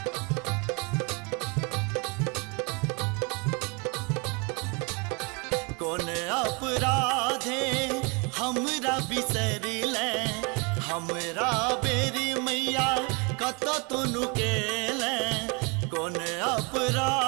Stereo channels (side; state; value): left; quieter; 31.6 dB